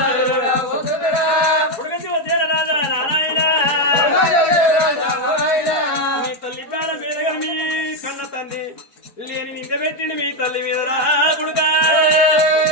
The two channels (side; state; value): right; late; 4.4 ms